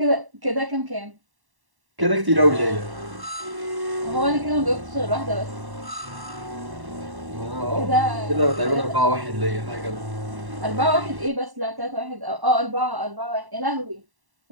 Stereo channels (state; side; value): late; left; 1.1 ms